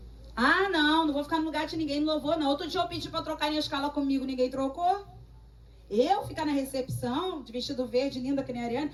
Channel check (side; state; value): both; identical; correlation 1.00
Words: Não vou ficar no lugar de ninguém, não vou não. Outro dia eu pedi pra trocarem a escala comigo, ninguém trocou. Eu ficar na recepção, de vestido verde, linda que nem a Ariane.